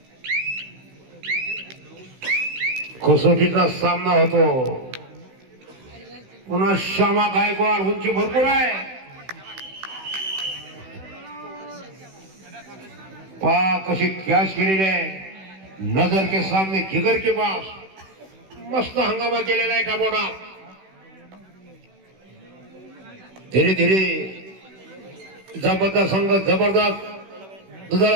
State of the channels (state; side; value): late; left; 16 ms